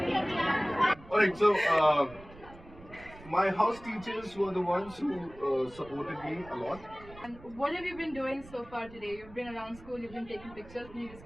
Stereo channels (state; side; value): noise; right; rumble, 19 dB below the sound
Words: Alright, so my house teachers were the ones who supported me a lot. And what have you been doing so far today? You've been around school, you've been taking pictures.